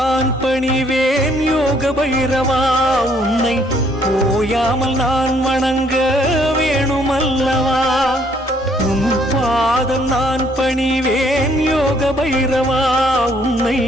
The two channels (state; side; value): normal; both; correlation 0.66